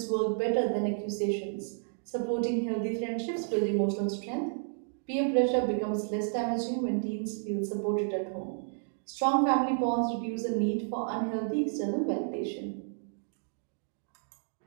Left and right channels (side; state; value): left; silent; digital silence